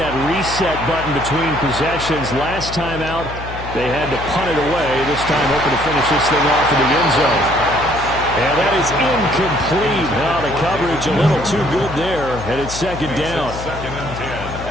reset button between possessions. Last time out, they had to punt it away. This time, hoping to finish this thing off in the end zone. And that is incomplete. Now the coverage a little too good there, and it's second down.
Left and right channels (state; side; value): noise; left; hum, 10 dB below the sound